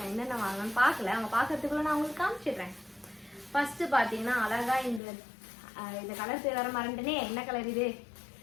என்னென்ன வாங்கணும்னு பார்க்கல, அவங்க பார்க்கறதுக்குள்ள நான் உங்களுக்கு காமிச்சிடுறேன். ஃபஸ்ட்டு பார்த்தீங்கன்னா அழகாக இந்த கலர் பேர் வர மறந்துட்டேனே, என்ன கலர் இது?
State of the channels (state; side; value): drops out; right; at 5.0 s